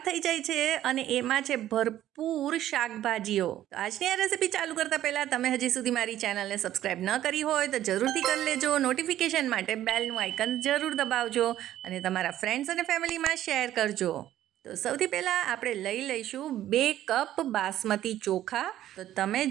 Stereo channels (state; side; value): quieter; left; 12.8 dB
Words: થઈ જાય છે, અને એમાં છે ભરપૂર શાકભાજીઓ. તો આજની આ રેસીપી ચાલુ કરતા પહેલા તમે હજી સુધી મારી ચેનલને સબસ્ક્રાઇબ ન કરી હોય તો જરૂરથી કરી લેજો. નોટિફિકેશન માટે બેલનું આઇકન જરૂર દબાવજો અને તમારા ફ્રેન્ડ્સ અને ફેમિલીમાં શેર કરજો. તો સૌથી પહેલાં આપણે લઈ લઈશું 2 કપ બાસમતી ચોખા. તો તમે